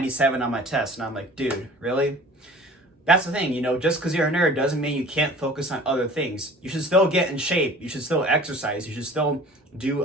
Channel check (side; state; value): both; normal; correlation 0.45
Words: on my test. And I'm like, dude, really? That's the thing, just because you're a nerd doesn't mean you can't focus on other things. You should still get in shape. You should still exercise. You should still do